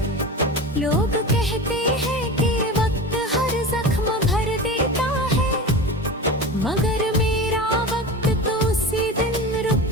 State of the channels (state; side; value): normal; both; correlation 0.29